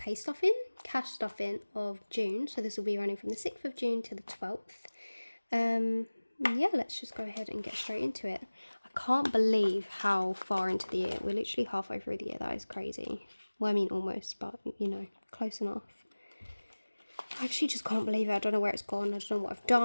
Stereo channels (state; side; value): inverted; both; correlation -1.00